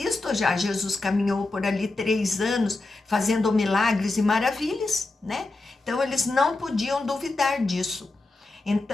já, Jesus caminhou por ali 3 anos, fazendo milagres e maravilhas, né? Então, eles não podiam duvidar disso.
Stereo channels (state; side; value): quieter; right; 3.2 dB